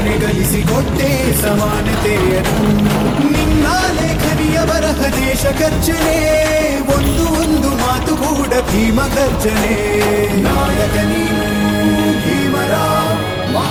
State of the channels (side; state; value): both; identical; correlation 1.00